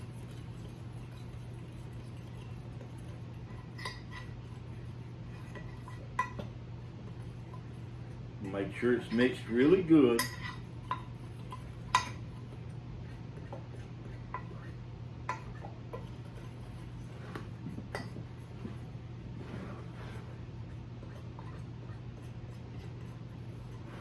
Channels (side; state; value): both; identical; correlation 1.00